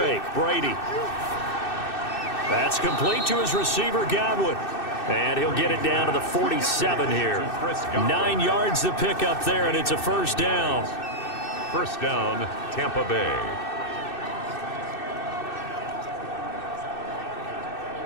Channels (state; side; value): late; right; 2.6 ms